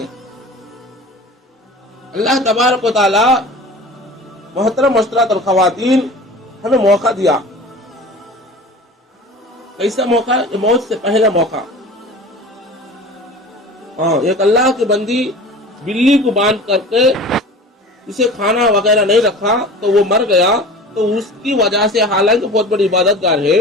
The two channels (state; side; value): normal; both; correlation 0.39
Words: اللہ تبارک و تعالی محترم مسٹرات اور خواتین ہمیں موقع دیا، کیسا موقع؟ موت سے پہلا موقع۔ ایک اللہ کی بندی بلی کو باندھ کر کے اسے کھانا وغیرہ نہیں رکھا تو وہ مر گیا، تو اس کی وجہ سے، حالانکہ بہت بڑی عبادت گار ہے،